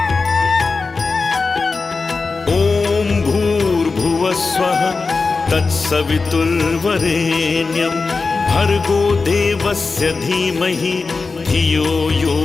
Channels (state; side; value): quieter; right; 4.2 dB